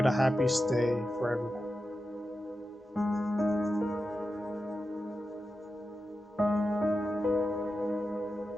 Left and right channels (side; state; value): both; normal; correlation 0.91